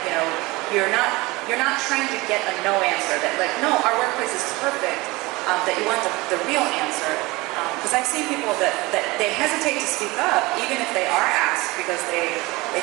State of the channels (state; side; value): quieter; left; 22.3 dB